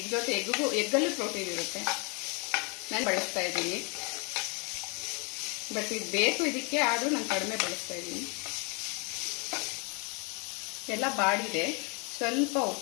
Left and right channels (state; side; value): quieter; right; 33.0 dB